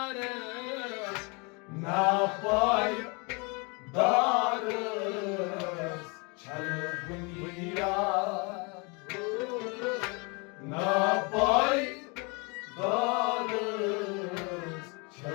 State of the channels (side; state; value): right; quieter; 30.7 dB